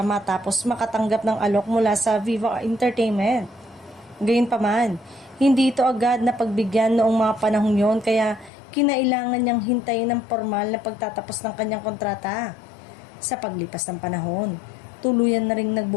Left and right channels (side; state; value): right; drops out; at 8.5 s